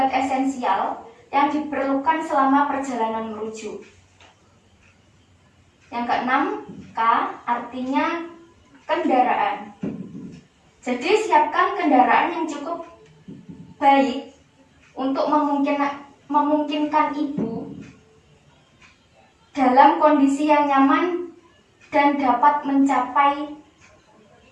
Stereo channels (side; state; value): both; identical; correlation 1.00